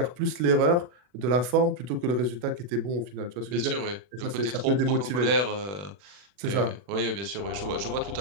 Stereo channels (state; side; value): late; left; 40 ms